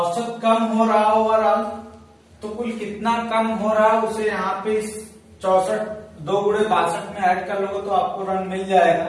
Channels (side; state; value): both; identical; correlation 1.00